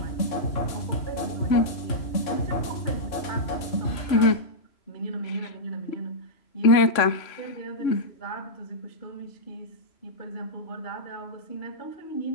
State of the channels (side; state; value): right; late; 3.0 ms